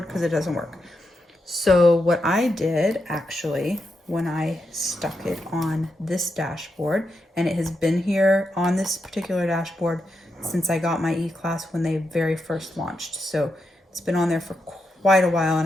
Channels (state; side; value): normal; both; correlation 0.85